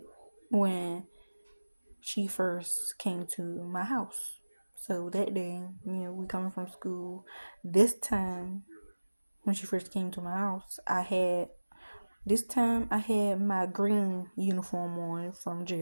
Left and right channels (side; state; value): both; inverted; correlation -1.00